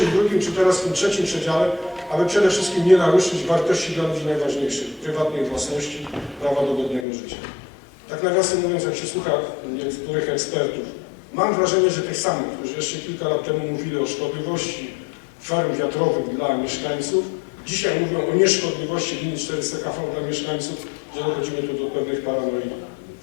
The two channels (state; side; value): drops out; right; at 7.1 s